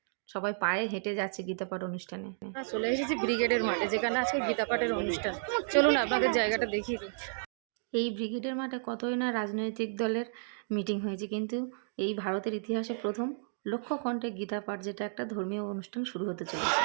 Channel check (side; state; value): left; silent; digital silence